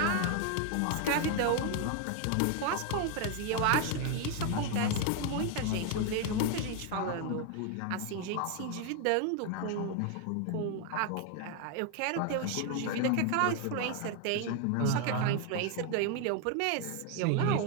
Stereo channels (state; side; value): different; both; correlation 0.01